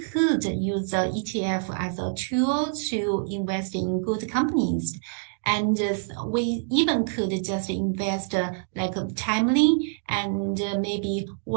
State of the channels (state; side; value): silent; left; digital silence